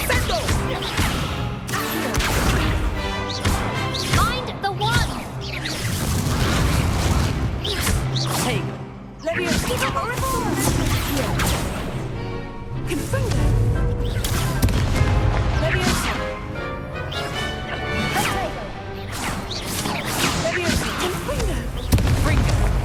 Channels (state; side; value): identical; both; correlation 1.00